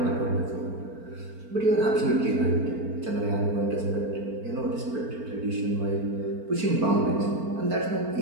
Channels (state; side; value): late; left; 4.4 ms